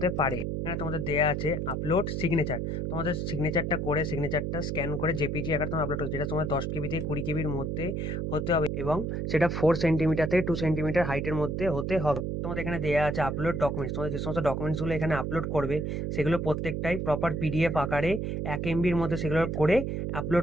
পারে। এখানে তোমাদের দেওয়া আছে আপলোড সিগনেচার। তোমাদের সিগনেচারটা করে সিগনেচারটা স্ক্যান করে জেপিজি আকারে তোমার আপলোড করো, যেটা তোমার 10 কেবি থেকে 20 কেবির মধ্যে হতে হবে, এবং সেটা 4 সেন্টিমিটার থেকে 2 সেন্টিমিটার হাইটের মধ্যে হতে হবে। তোমাদের এখানে দেওয়া আছে আপলোড ডকুমেন্টস। তোমাদের যে সমস্ত ডকুমেন্টসগুলো এখানে আপলোড করবে সেগুলো প্রত্যেকটাই প্রপার পিডিএফ আকারে 1 এমবির মধ্যে সেগুলো করে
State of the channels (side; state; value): right; noise; hum, 2 dB below the sound